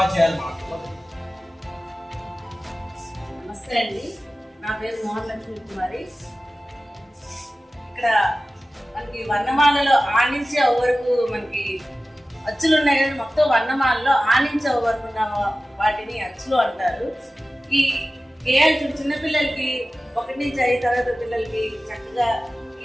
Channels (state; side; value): normal; both; correlation 0.96